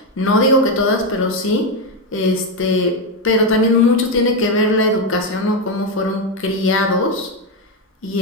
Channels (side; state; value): both; normal; correlation 0.07